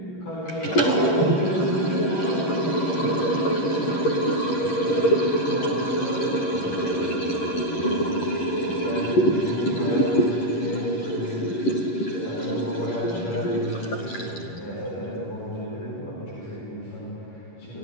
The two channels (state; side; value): late; right; 11 ms